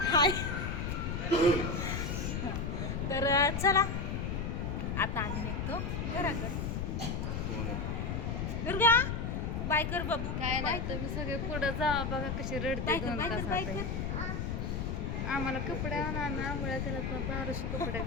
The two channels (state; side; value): noise; left; rumble, 2 dB below the sound